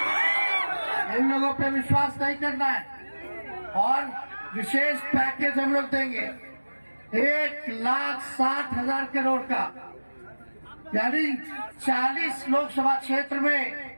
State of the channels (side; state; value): both; inverted; correlation -1.00